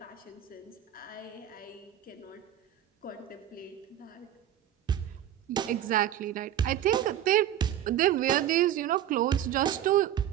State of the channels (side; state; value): left; quieter; 11.2 dB